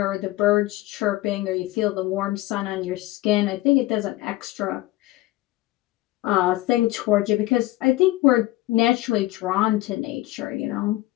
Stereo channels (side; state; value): right; quieter; 17.4 dB